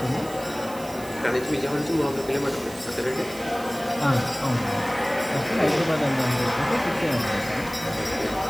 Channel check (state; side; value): noise; right; hiss, 17 dB below the sound